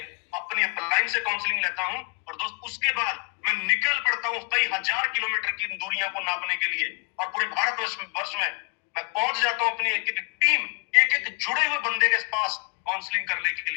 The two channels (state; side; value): quieter; right; 36.8 dB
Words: अपनी अपलाइन से काउंसलिंग लेता हूं, और दोस्त उसके बाद मैं निकल पड़ता हूं कई हजार किलोमीटर की दूरियां को नापने के लिए, और पूरे भारतवर्ष में मैं पहुंच जाता हूं अपनी एक एक टीम, एक एक जुड़े हुए बंदे के पास काउंसलिंग करने के